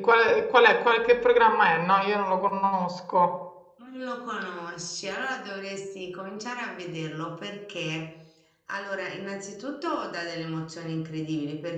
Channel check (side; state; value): both; identical; correlation 1.00